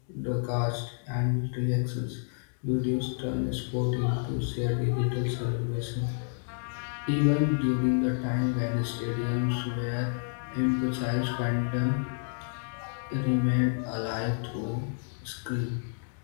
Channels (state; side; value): silent; right; digital silence